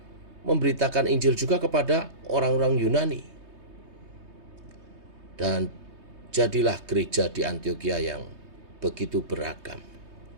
memberitakan Injil juga kepada orang-orang Yunani. Dan jadilah gereja di Antiokhia yang begitu beragam.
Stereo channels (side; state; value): left; late; 3.2 ms